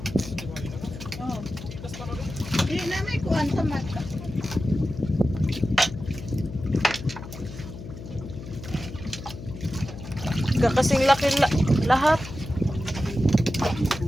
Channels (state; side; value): noise; left; hum, 12 dB below the sound